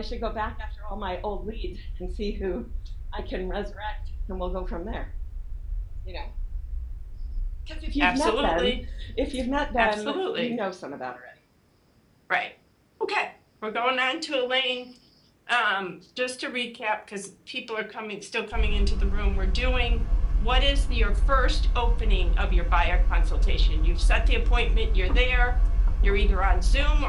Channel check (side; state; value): both; identical; correlation 1.00